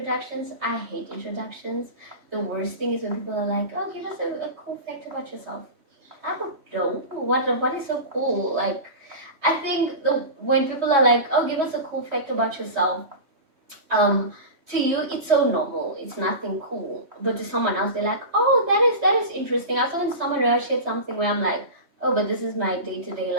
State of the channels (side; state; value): left; late; 3.1 ms